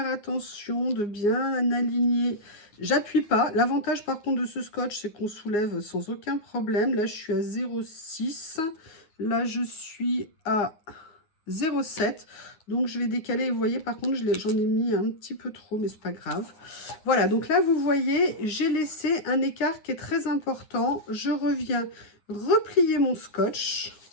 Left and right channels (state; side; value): late; right; 9.7 ms